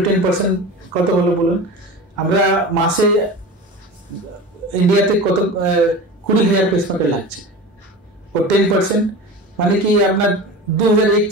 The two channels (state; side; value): normal; both; correlation 0.32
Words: কত হলো বলুন? আমরা মাসে ইন্ডিয়াতে কত 20,000 পেসমেকার লাগছে, ও 10% মানে কি আপনার